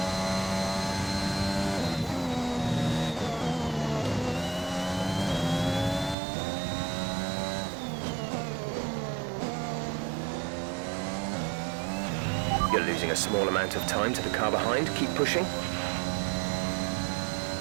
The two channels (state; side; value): drops out; left; at 6.2 s